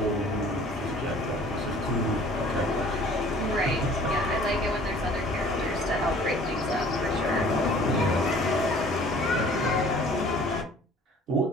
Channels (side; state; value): both; normal; correlation 0.51